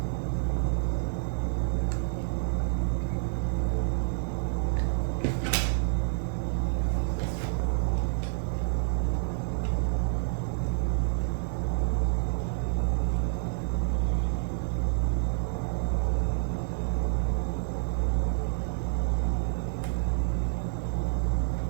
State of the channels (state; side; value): silent; left; digital silence